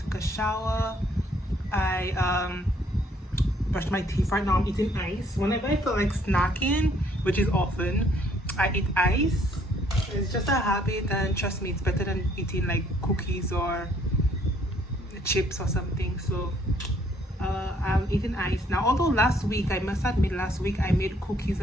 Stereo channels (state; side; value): normal; both; correlation 0.65